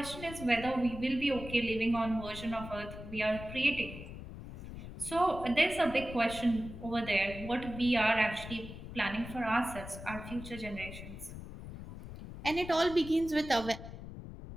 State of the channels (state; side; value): noise; left; rumble, 11 dB below the sound